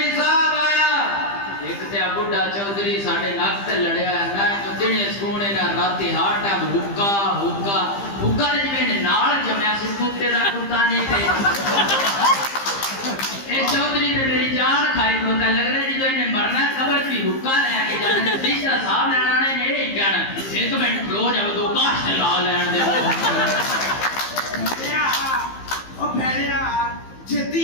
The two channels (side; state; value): right; late; 15 ms